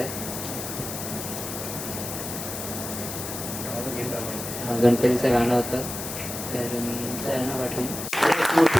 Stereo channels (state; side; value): noise; left; hiss, 7 dB below the sound